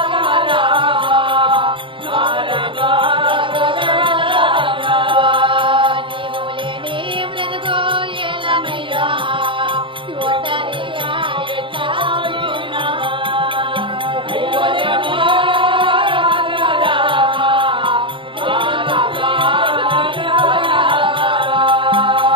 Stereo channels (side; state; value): left; late; 0.25 ms